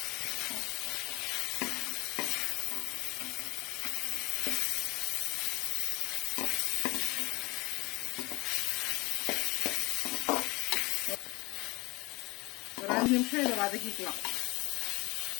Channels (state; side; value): quieter; right; 23.8 dB